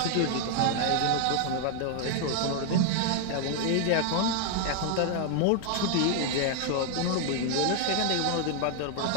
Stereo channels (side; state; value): both; different; correlation 0.00